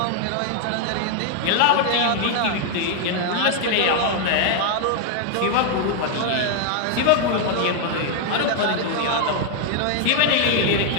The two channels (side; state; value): both; different; correlation 0.00